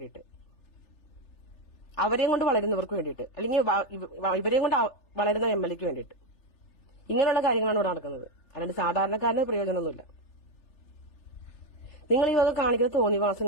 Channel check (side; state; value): right; late; 3.4 ms